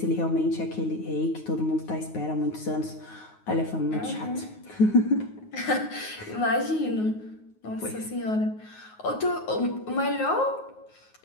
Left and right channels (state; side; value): late; right; 9.4 ms